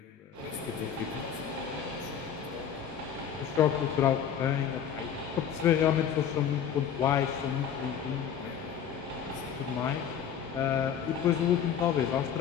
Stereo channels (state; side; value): quieter; right; 8.3 dB